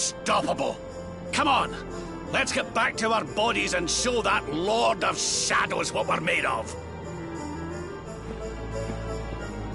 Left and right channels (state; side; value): identical; both; correlation 1.00